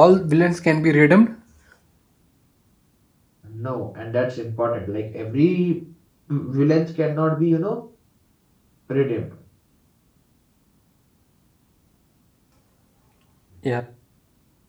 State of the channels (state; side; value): identical; both; correlation 1.00